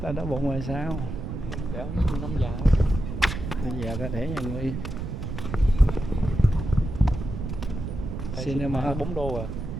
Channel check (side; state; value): right; noise; rumble, 5 dB below the sound